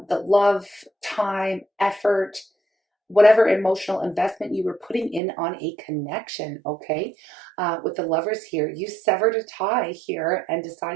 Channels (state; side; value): drops out; left; at 5.2 s